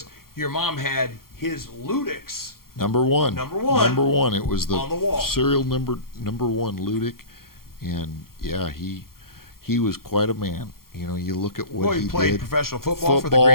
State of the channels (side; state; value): right; late; 0.93 ms